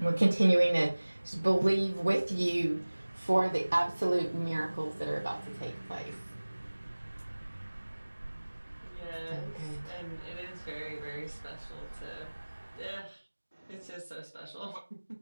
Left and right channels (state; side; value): inverted; both; correlation -1.00